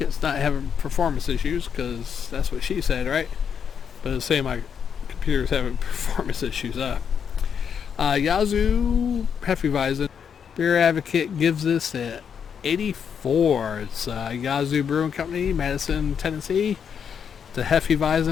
not having performance issues, because that's what she said, right? But it's saying my computer's having performance issues. Yazoo Hefeweizen. Beer Advocate gives this at 84. It's Yazoo Brewing Company, Madison, Tennessee. It's a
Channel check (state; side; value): quieter; right; 7.4 dB